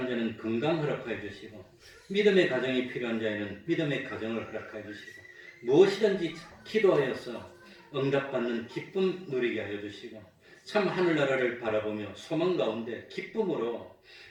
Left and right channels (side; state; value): both; identical; correlation 1.00